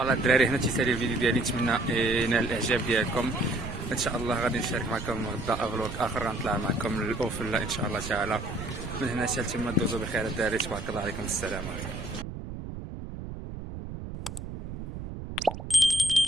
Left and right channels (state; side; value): noise; right; rumble, 8 dB below the sound